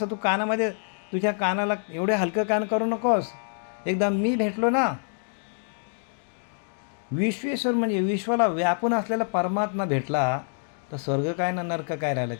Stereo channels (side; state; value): right; silent; 61 dB below the other